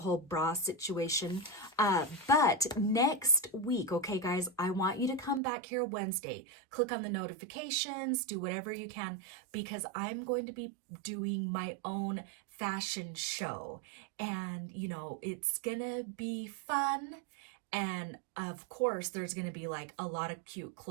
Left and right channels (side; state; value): left; drops out; at 5.4 s